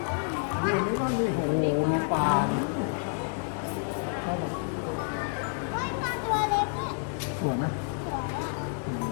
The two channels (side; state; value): right; silent; 58 dB below the other